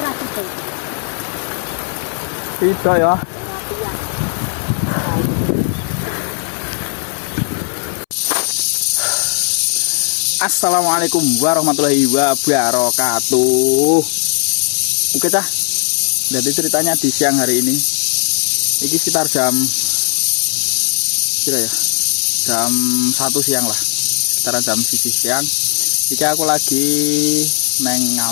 ra gitu. Tidak ya. Assalamualaikum warahmatullahi wabarakatuh. Oke cah. Jadi ceritanya di siang hari ini. Ini sekitar jam kira ya. Jam 1 siang lah. Sekitaran jam 1 siang. Iki aku lagi neng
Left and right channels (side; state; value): right; silent; 65 dB below the other